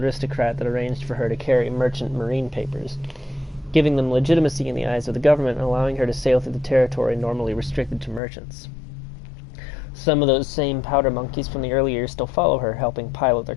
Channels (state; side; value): drops out; right; at 8.2 s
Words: that arranged for her to carry merchant marine papers, giving them legitimacy in the eyes of the government and allowing her to sail through the territory normally restricted to merchants. Some of those same powder monkeys from the early years still follow her, helping pilot their